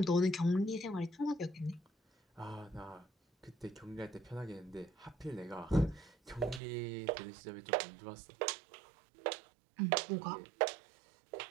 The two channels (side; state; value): left; drops out; at 6.6 s